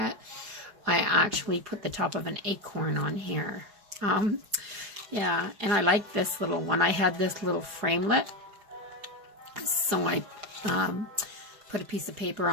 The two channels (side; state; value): left; late; 4.8 ms